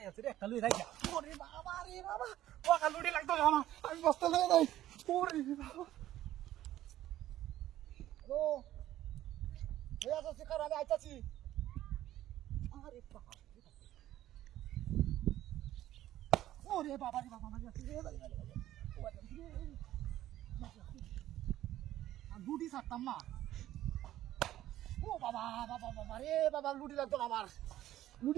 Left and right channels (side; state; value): left; quieter; 13.5 dB